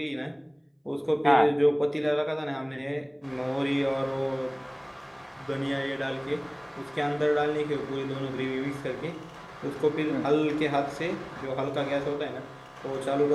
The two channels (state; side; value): identical; both; correlation 1.00